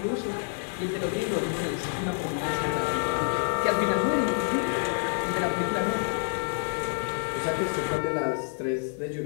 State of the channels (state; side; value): silent; right; digital silence